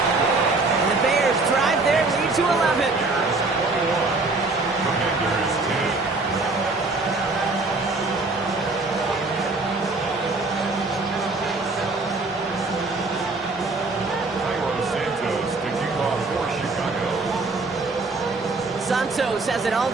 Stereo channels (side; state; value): left; quieter; 3.5 dB